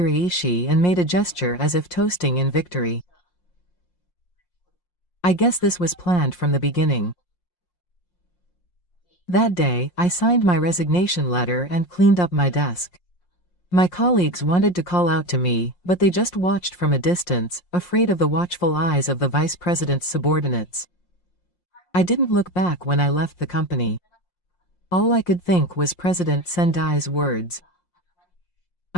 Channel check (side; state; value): right; late; 5.6 ms